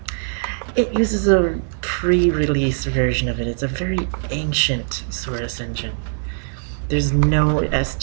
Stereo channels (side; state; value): left; silent; digital silence